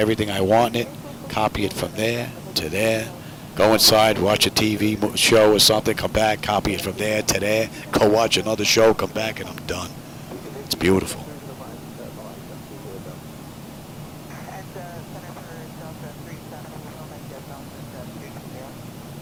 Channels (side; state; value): both; identical; correlation 1.00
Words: I want in it, copy it from there to there, go inside, watch a TV show or something, come back, copy it from there to there, go watch another show, come back, and I'm done. It's beautiful.